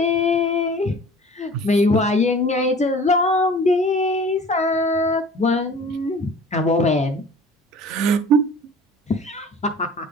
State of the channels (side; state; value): both; normal; correlation 0.45